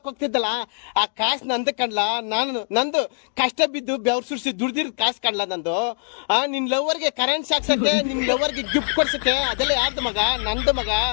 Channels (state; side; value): silent; right; digital silence